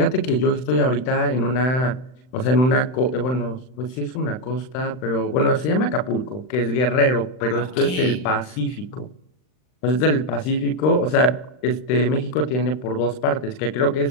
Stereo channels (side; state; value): right; late; 39 ms